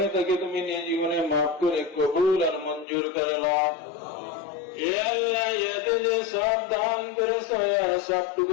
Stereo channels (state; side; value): drops out; right; at 2.9 s